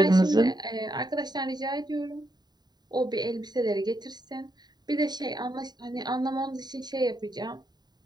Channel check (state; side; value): late; left; 0.20 ms